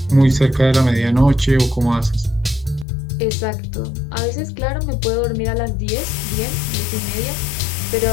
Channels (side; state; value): right; drops out; at 2.9 s